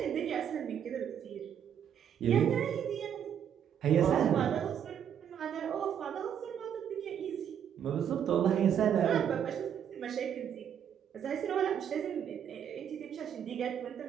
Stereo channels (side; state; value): left; quieter; 8.9 dB